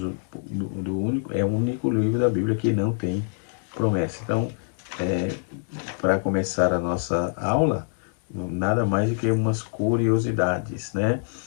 livro da Bíblia que não tem promessa. Então, para começar a nossa aula, nada mais do que umas curiosidades, né?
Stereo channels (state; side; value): silent; right; digital silence